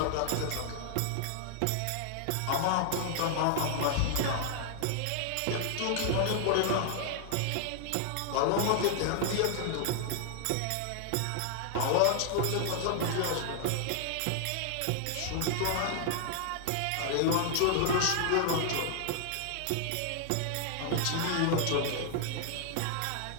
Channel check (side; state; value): both; different; correlation 0.00